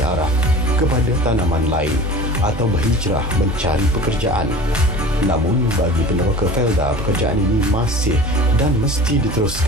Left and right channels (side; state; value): both; normal; correlation 0.39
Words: arah kepada tanaman lain atau berhijrah mencari pekerjaan. Namun bagi peneroka Felda, pekerjaan ini masih dan mesti